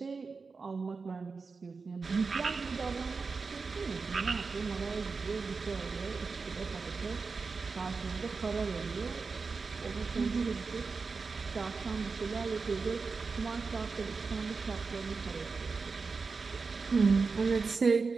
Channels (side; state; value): left; quieter; 4.6 dB